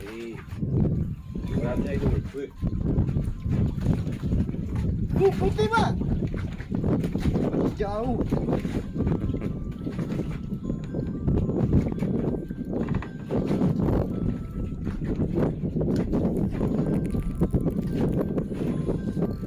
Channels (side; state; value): both; identical; correlation 1.00